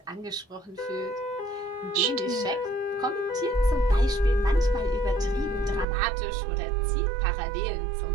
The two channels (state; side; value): drops out; left; at 5.9 s